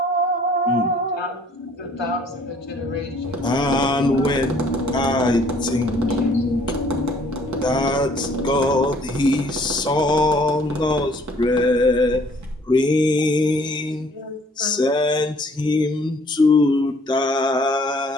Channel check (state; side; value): normal; both; correlation 0.59